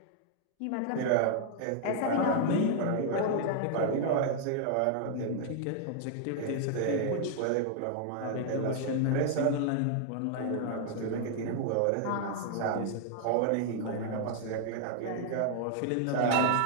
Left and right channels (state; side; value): different; both; correlation 0.00